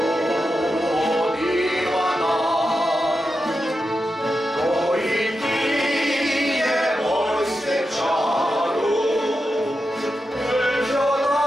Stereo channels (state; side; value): normal; both; correlation 0.89